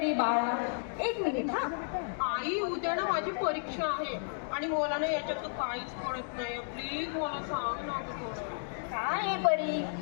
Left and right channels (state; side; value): silent; right; digital silence